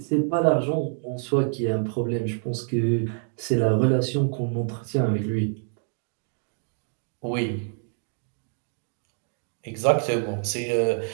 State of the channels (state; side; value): silent; left; 57 dB below the other